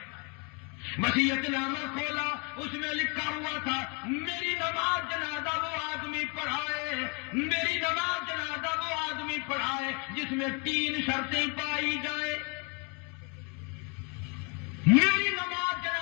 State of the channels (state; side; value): quieter; right; 34.0 dB